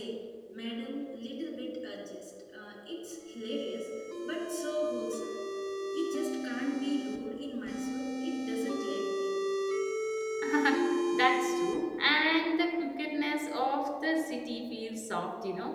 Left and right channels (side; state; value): both; identical; correlation 1.00